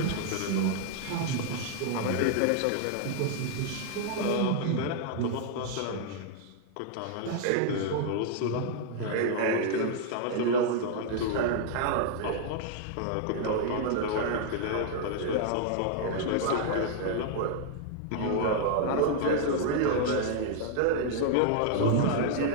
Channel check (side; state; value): both; different; correlation -0.01